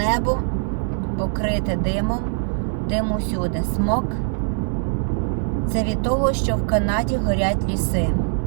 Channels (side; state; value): left; silent; digital silence